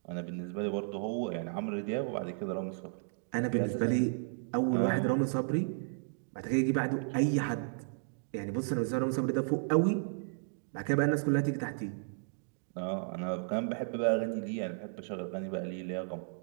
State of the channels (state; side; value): silent; left; digital silence